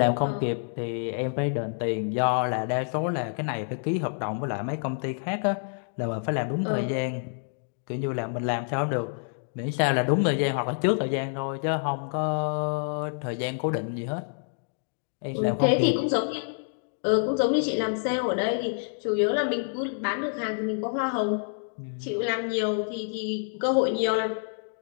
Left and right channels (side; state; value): right; silent; digital silence